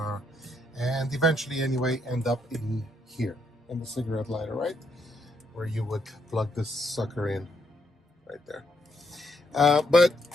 and eventually anyway end up in here, in the cigarette lighter, right? Where you would plug this sucker in right there. But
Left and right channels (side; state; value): both; normal; correlation 0.75